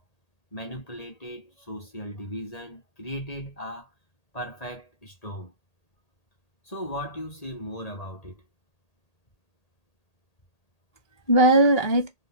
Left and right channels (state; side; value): late; right; 1.8 ms